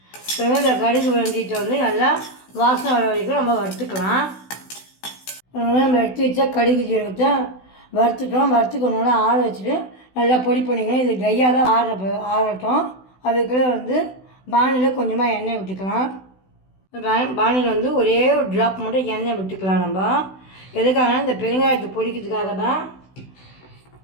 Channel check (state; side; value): late; right; 16 ms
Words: பாருங்கள், இந்த கடுகு வெந்தயத்தை வந்து நல்லா வாசனை வர வரைக்கும் நம்ம வறுத்துக்கலாம். நம்ம எடுத்து வச்சா கடுகு ஜீரகத்தை வறுத்துட்டோம். வறுத்துக்கணும்னா ஆற வச்சுட்டு நல்லா பொடி பண்ணிக்கணும். இது ட்ரையாக தான் ஆறட்டும். அதுக்குள்ளே வந்து பானியில் கொஞ்சமாக எண்ணெய் விட்டுக்கலாம். பானியில் வந்து ஒரே ஒரு ட்ராப் மட்டும் எண்ணெய் விட்டுக்கலாம். நம்ம எதுக்காக இந்த பெருங்காயத்தை பொரிக்கிறதுக்காக தான்.